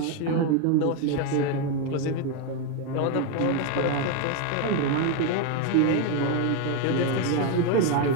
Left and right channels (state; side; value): different; both; correlation 0.02